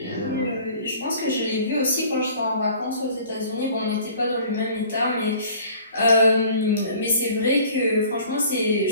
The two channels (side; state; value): both; inverted; correlation -0.50